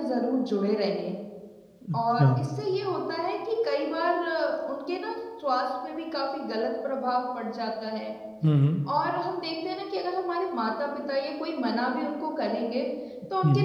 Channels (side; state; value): both; identical; correlation 1.00